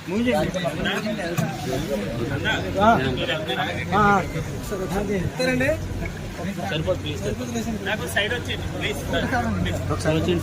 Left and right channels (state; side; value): identical; both; correlation 1.00